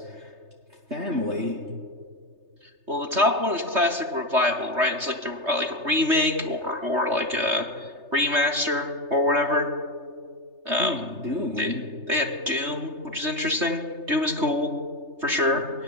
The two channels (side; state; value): left; late; 3.3 ms